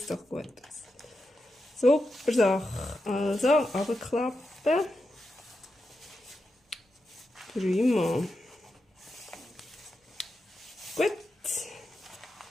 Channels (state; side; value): normal; both; correlation 0.88